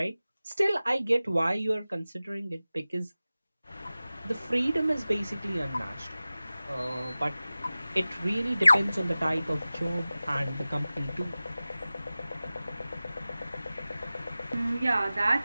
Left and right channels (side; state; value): both; inverted; correlation -0.97